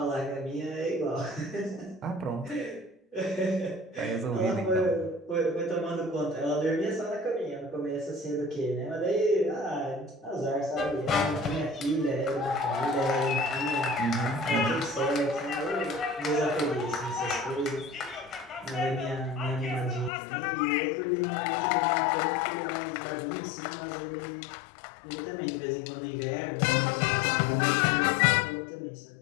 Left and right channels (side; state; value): right; drops out; at 20.1 s